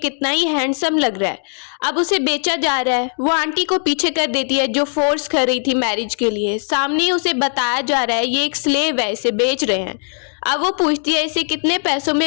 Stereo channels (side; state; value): right; silent; digital silence